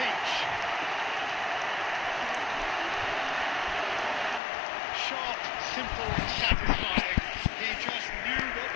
Sharp, simple, satisfying. He just knew what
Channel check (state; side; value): drops out; right; at 4.4 s